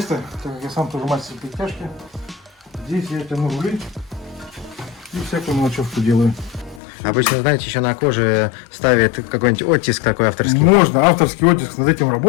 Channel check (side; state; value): right; drops out; at 6.8 s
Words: так как я сам тоже мастер подтяжки. Здесь я тяну рули и всякую мелочевку делаю. Обычно, знаете, еще на коже ставят какой-нибудь оттиск такой авторский. Можно, авторский оттиск, над этим